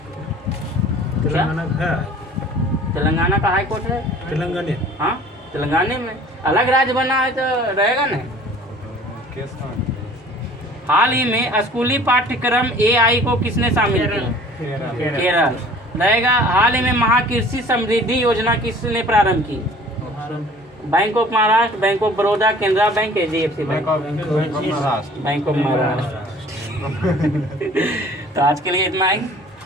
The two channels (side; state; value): both; normal; correlation 0.49